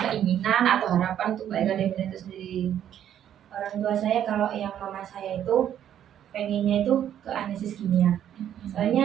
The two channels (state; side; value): quieter; left; 10.3 dB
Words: atau harapan untuk Mbak Eka Devina itu sendiri. Orang tua saya kalau yang mama saya itu pengennya itu ke analisis kimia.